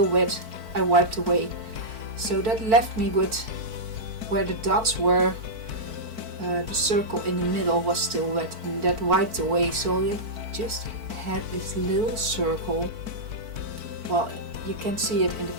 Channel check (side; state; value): left; late; 4.5 ms